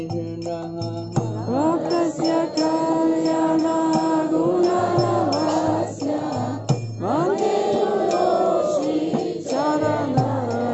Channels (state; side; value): identical; both; correlation 1.00